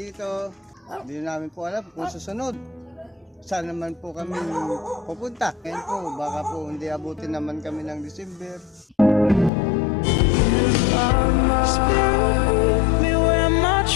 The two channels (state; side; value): drops out; right; at 9.5 s